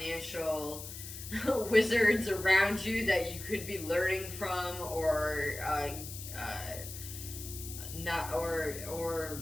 wizards around you that you could be learning from, or not, or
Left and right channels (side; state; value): left; noise; hiss, 10 dB below the sound